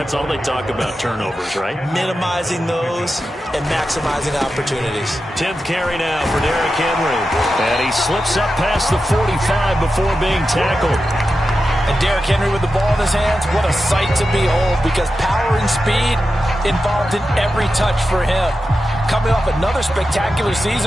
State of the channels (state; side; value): normal; both; correlation 0.91